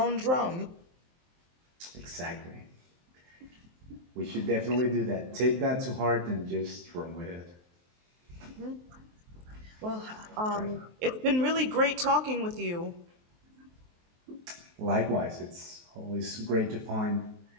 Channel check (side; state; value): left; late; 23 ms